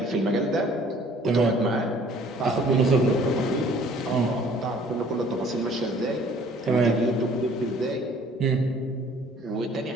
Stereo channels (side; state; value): both; normal; correlation 0.55